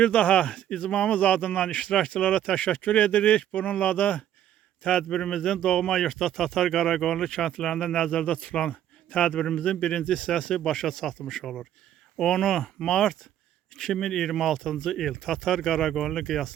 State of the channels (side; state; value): left; quieter; 11.2 dB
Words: daha icmamız adından iştirakçılara təşəkkür edirik. Bununla da tədbirimizin doğma yurtda Tatar Qaraqoyunlu kəndlərində nəzərdə tutulan tədbirimizin birinci hissəsi başa çatmış olur. 10 mart 2026-cı il Tatar Qaraqoyunlu